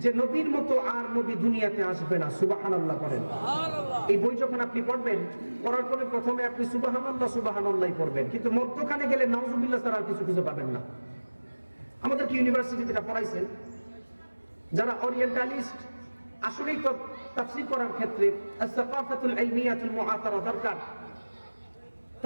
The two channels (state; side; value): inverted; both; correlation -1.00